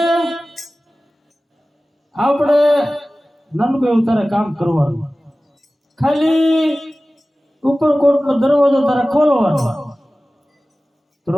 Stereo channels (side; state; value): both; normal; correlation 0.97